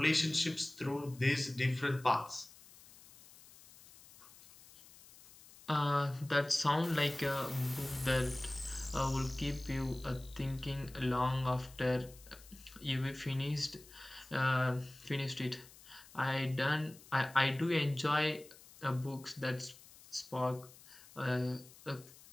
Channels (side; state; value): left; noise; hiss, 22 dB below the sound